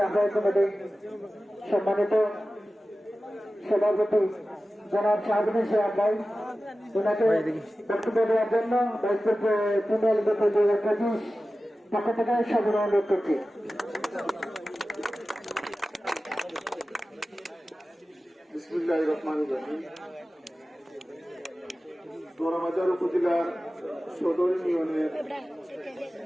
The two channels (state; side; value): normal; both; correlation 0.95